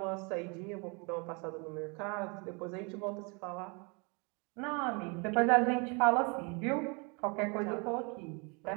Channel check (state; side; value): quieter; left; 31.9 dB